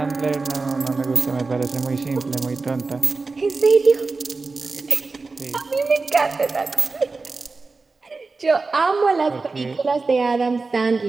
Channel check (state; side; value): quieter; left; 3.9 dB